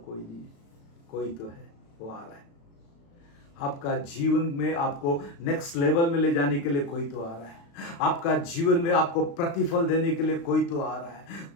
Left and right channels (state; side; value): late; right; 36 ms